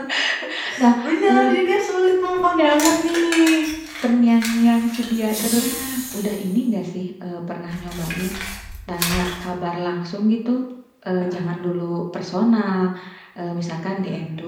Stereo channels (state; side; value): identical; both; correlation 1.00